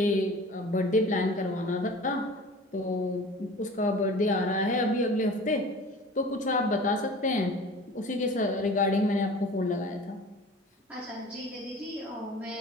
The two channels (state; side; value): normal; both; correlation 0.41